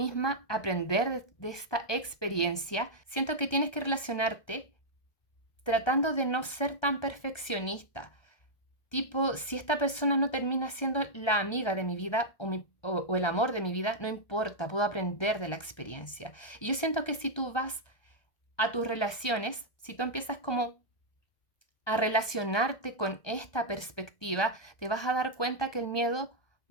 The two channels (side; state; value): right; late; 1.3 ms